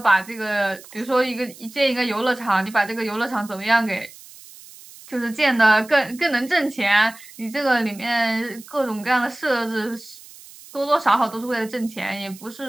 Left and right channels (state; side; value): noise; right; hiss, 20 dB below the sound